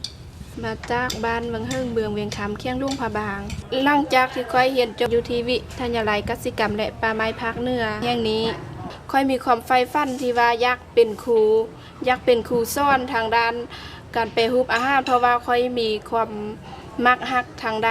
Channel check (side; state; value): both; identical; correlation 1.00